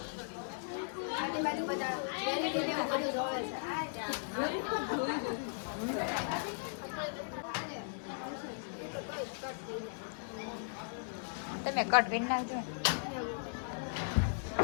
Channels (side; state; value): right; silent; digital silence